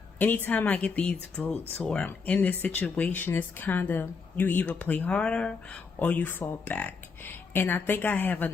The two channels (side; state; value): right; quieter; 5.0 dB